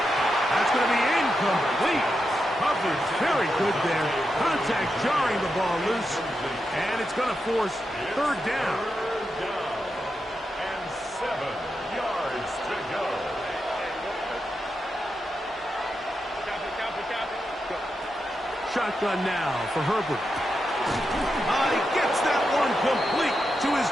gonna be incomplete. Coverage very good there. Contact jarring the ball loose. And it's gonna force 3rd down. 7 yards to go. Shotgun now for Herbert. He gets that one complete to his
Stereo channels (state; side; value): normal; both; correlation 0.87